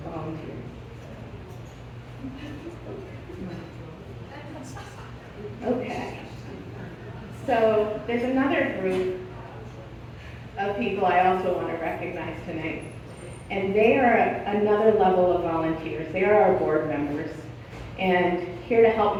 volunteers. Okay. So there's another group of people I also want to recognize tonight. And they are another level of volunteers. They are our board members. And here to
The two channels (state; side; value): identical; both; correlation 1.00